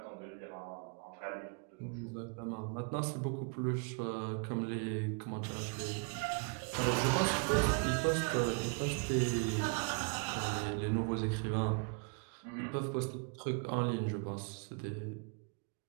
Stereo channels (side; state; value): left; quieter; 37.1 dB